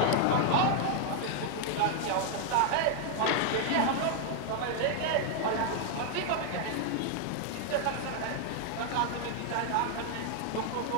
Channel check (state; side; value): different; both; correlation 0.00